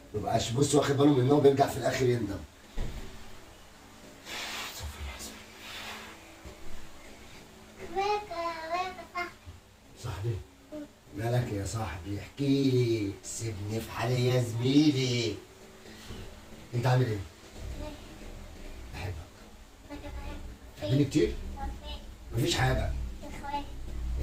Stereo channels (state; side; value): identical; both; correlation 1.00